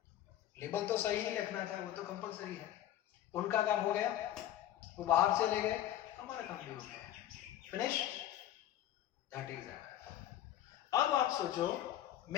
लेबल तो सही ही रखना था, वो तो कंपलसरी है। उनका काम हो गया, वो बाहर से ले गए, हमारा काम भी हो गया। Finish, that is it. अब आप सोचो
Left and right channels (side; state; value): right; quieter; 12.5 dB